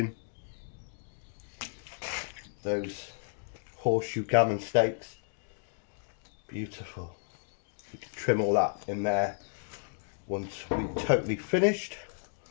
Those horseshoe gammon steaks, Beautiful. You can trim all that in there once we're totally finished.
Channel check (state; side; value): silent; right; digital silence